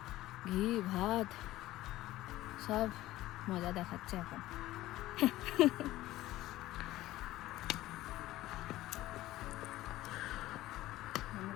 ঘি, ভাত সব মজা দেখাচ্ছে এখন।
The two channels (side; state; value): right; quieter; 16.1 dB